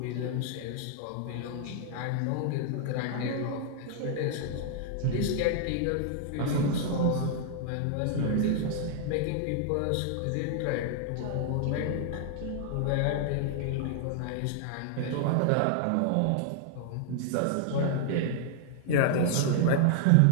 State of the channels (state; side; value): different; both; correlation -0.01